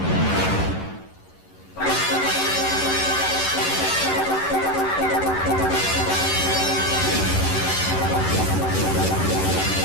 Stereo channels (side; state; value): right; late; 11 ms